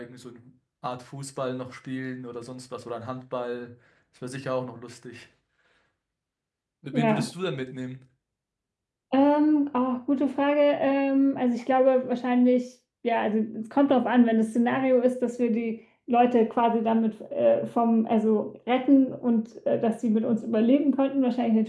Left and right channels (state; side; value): identical; both; correlation 1.00